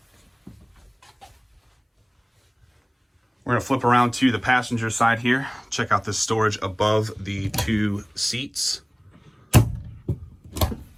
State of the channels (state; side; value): identical; both; correlation 1.00